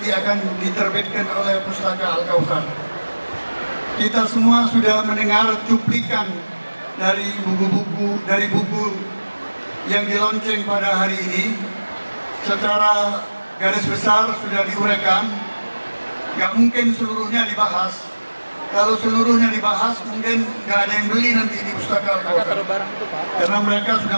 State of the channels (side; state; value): both; inverted; correlation -1.00